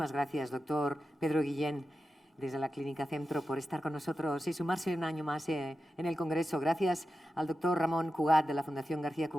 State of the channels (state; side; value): normal; both; correlation 0.91